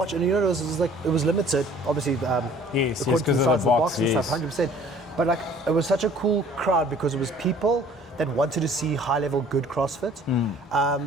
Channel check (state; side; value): normal; both; correlation 0.53